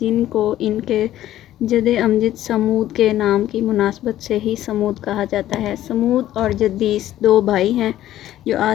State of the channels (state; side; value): quieter; right; 13.2 dB